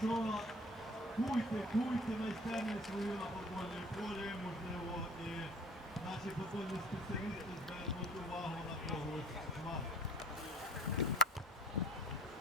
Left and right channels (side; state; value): both; normal; correlation 0.49